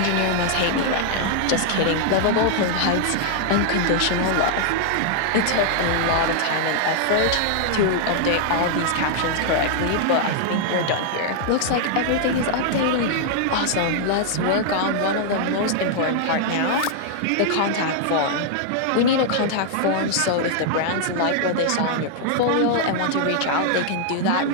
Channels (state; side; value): different; both; correlation -0.01